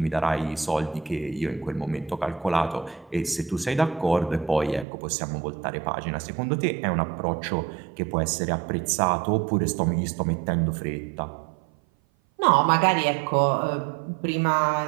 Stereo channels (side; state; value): left; drops out; at 4.9 s